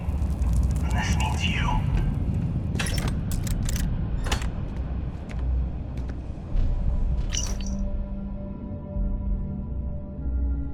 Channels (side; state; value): both; identical; correlation 1.00